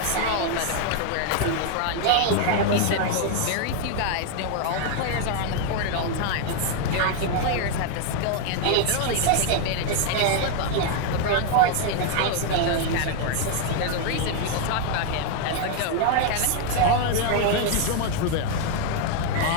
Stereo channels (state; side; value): different; both; correlation 0.01